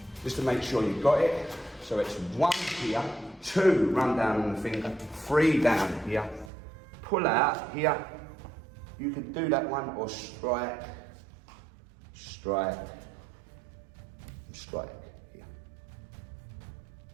just to make sure you've got it. So it's 1 here, 2, run down on the finger, 3 down here, pull out here. You can do that one or strike, strike, and strike here.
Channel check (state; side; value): drops out; left; at 6.5 s